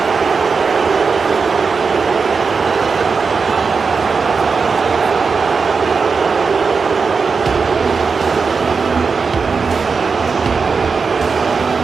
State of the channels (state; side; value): quieter; left; 5.0 dB